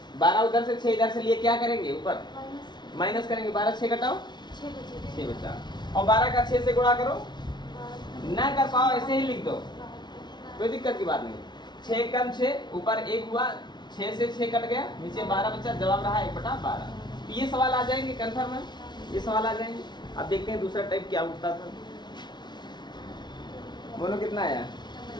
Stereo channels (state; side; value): late; right; 0.21 ms